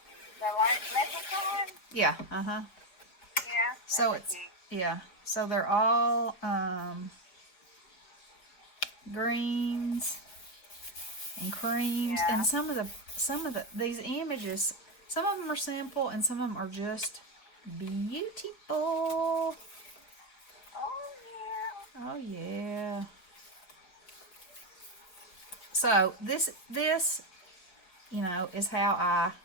The leprechaun? Yeah, uh-huh. Yeah. So that's it's cute. yeah. So they're all greens and creams, Yeah. and some of the these images, some of them are simple and some of them are just beautiful. Oh, yeah. Oh yeah. So this is how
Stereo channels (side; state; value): right; late; 4.8 ms